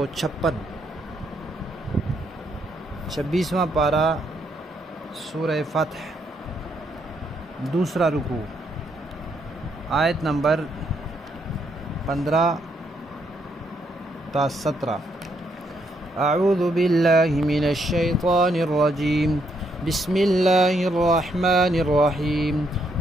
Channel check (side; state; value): both; normal; correlation 0.75